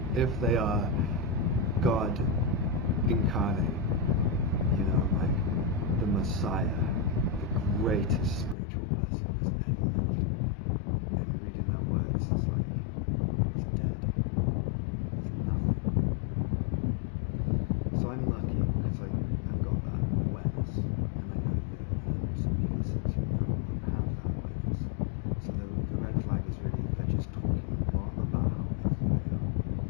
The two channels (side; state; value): right; drops out; at 8.6 s